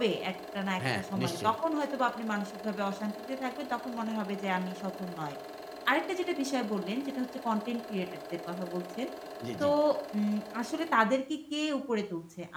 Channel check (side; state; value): both; identical; correlation 1.00